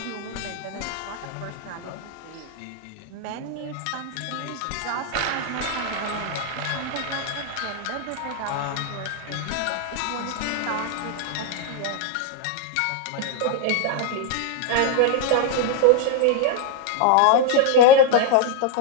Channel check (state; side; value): different; both; correlation 0.01